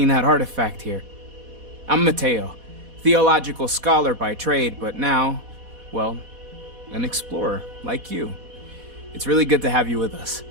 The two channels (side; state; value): left; late; 4.1 ms